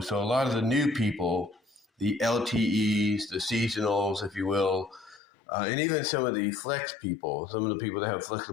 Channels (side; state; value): right; drops out; at 5.2 s